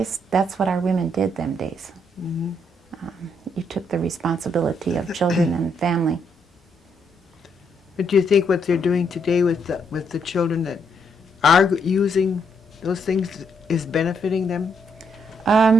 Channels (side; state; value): both; normal; correlation 0.74